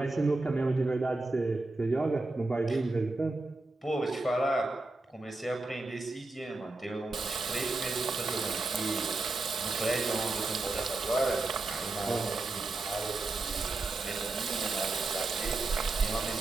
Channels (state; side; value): quieter; left; 3.2 dB